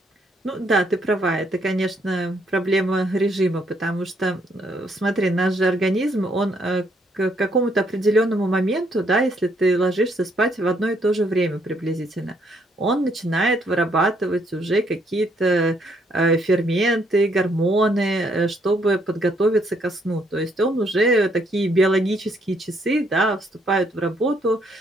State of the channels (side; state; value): both; normal; correlation 0.70